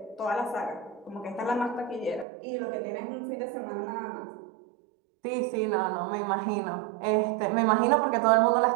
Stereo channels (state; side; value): drops out; left; at 2.2 s